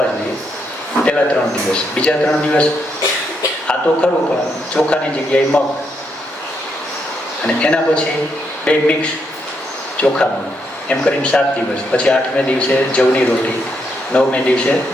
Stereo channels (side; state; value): both; normal; correlation 0.78